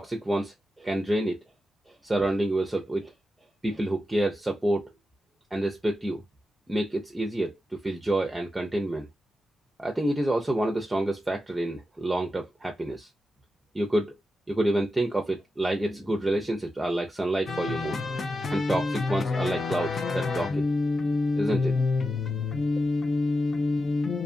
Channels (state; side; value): normal; both; correlation 0.89